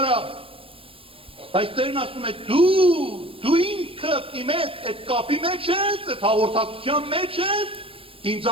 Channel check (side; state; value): left; late; 0.26 ms